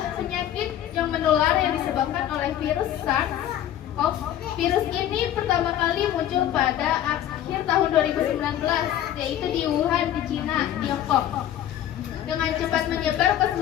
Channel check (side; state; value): right; quieter; 11.5 dB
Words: penyakit yang menular yang disebabkan oleh virus SARS-CoV. Virus ini pertama kali muncul pada akhir tahun 2019, yaitu di Wuhan, di Cina, Tiongkok. Dengan cepat menyebar ke